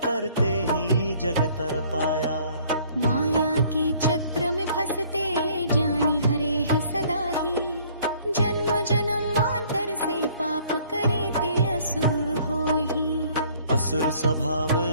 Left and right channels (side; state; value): both; inverted; correlation -0.58